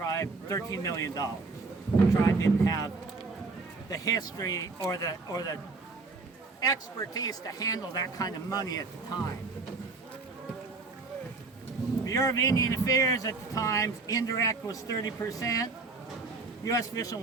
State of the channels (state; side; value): quieter; left; 3.9 dB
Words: $13 million. The tribe didn't have the history or the expertise to handle that kind of money at the time. Bureau of Indian Affairs at the time, indirect was 30%. U.S. Fish and